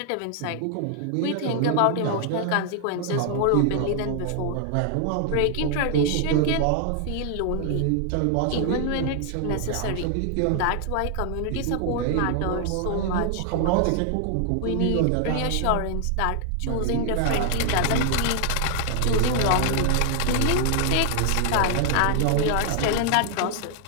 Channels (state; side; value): different; both; correlation 0.00